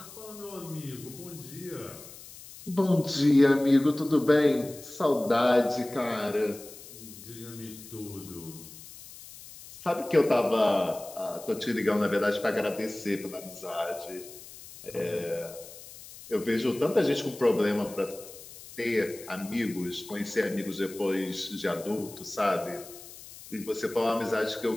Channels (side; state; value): left; noise; hiss, 17 dB below the sound